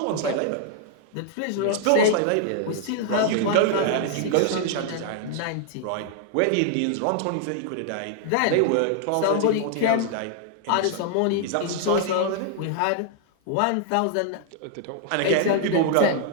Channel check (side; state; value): both; different; correlation -0.01